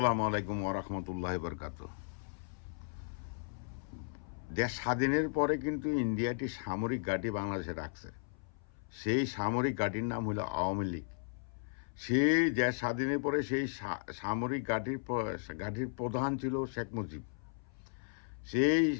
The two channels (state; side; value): silent; right; 54 dB below the other